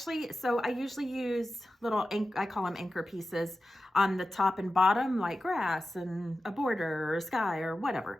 usually use little, I call them anchor pieces on the top and bottom, like grass and a border or a sky or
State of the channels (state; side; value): normal; both; correlation 0.93